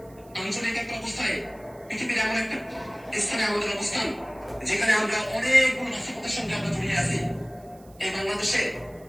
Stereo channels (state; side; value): noise; right; hiss, 28 dB below the sound